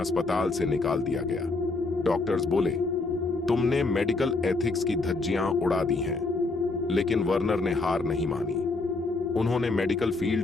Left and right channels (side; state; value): right; quieter; 3.5 dB